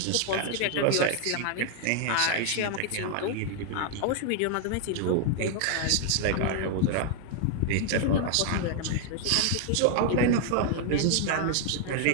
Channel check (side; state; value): both; different; correlation 0.00